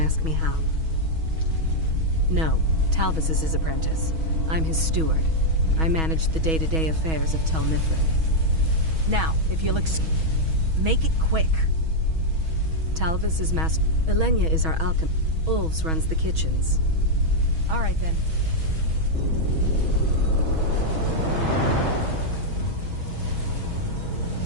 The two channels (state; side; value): late; left; 6.2 ms